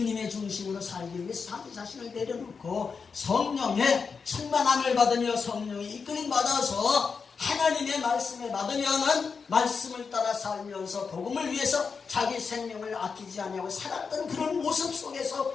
중심으로 살기 위해서 자기 자신을 내려놓고 성령의 충만함을 받으며 성령의 이끌림 받아서 하나님의 말씀을 받으면은 말씀을 따라 살면서 복음을 위해서 자기 생명을 아끼지 아니하고 살았던 그런 모습 속에서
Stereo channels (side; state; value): right; quieter; 5.4 dB